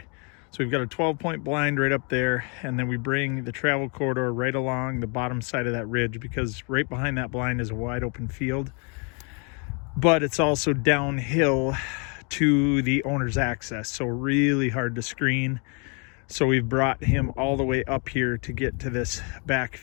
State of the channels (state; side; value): quieter; right; 35.7 dB